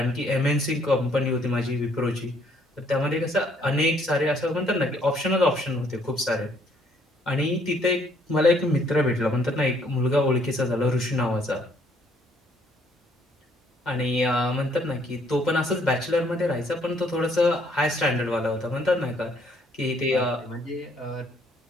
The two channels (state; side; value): normal; both; correlation 0.65